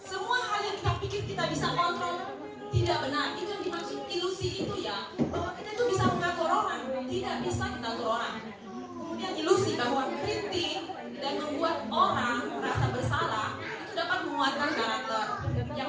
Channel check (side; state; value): both; identical; correlation 1.00